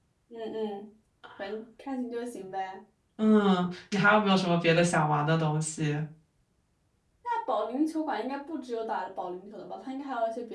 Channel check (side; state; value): both; identical; correlation 1.00